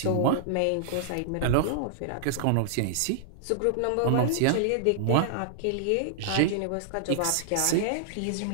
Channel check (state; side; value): different; both; correlation -0.01